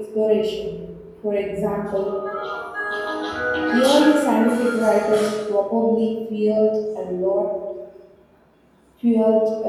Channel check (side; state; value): both; identical; correlation 1.00